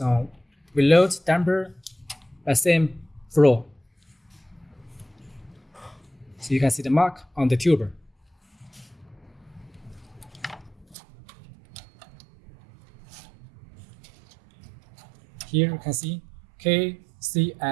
we load damper by same flow. So you can see the mark on the tuber. Here you can see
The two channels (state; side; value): drops out; left; at 11.0 s